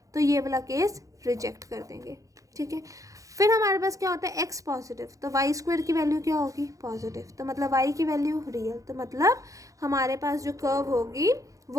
तो ये वाला केस रिजेक्ट कर देंगे। ठीक है, फिर हमारे पास क्या होता है, x पॉजिटिव, तो वाई स्क्वायर की वैल्यू क्या होगी, पॉजिटिव, तो मतलब y की वैल्यू रियल, तो मतलब हमारे पास जो कर्व होगी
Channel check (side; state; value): left; late; 0.16 ms